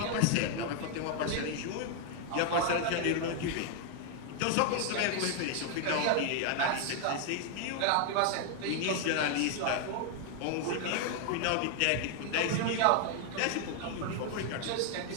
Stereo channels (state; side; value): different; both; correlation 0.00